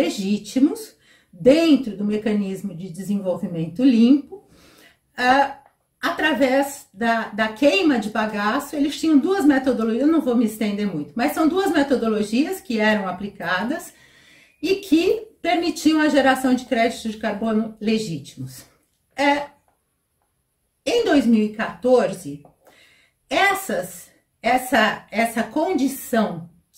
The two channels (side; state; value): both; identical; correlation 1.00